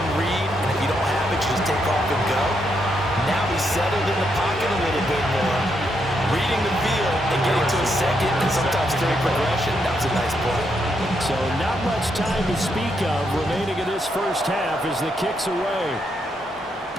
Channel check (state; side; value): normal; both; correlation 0.79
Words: read, and if you don't have it, you just take off and go. Now he's settled in the pocket a little bit more, reading the field and getting to a second and sometimes third progression. That was a nice play. So not much time to speak of remaining in this first half as the kick's away.